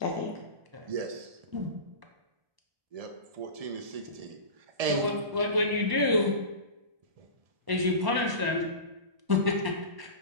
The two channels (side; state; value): left; late; 1.1 ms